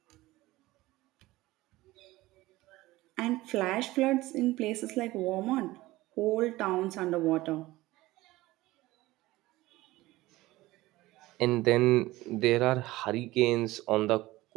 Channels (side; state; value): left; quieter; 18.4 dB